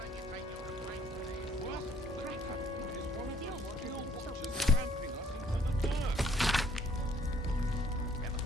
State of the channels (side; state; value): both; normal; correlation 0.62